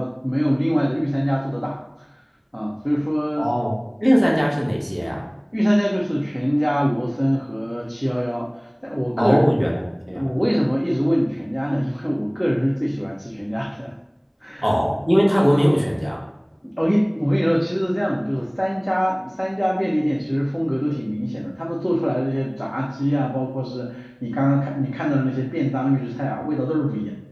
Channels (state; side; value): identical; both; correlation 1.00